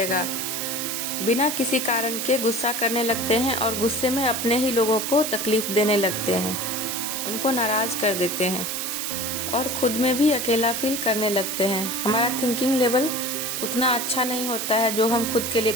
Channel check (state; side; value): noise; right; hiss, 3 dB below the sound